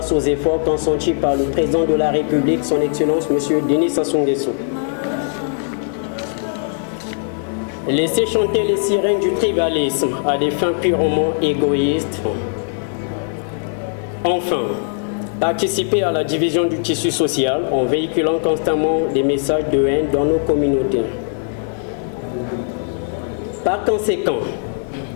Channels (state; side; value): silent; right; 65 dB below the other